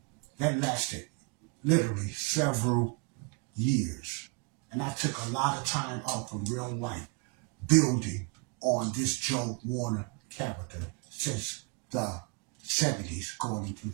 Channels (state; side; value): quieter; left; 31.6 dB